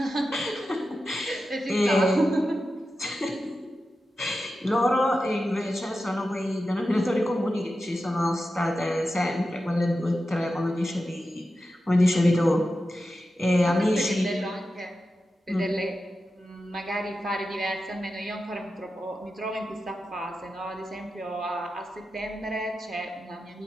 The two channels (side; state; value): both; normal; correlation 0.91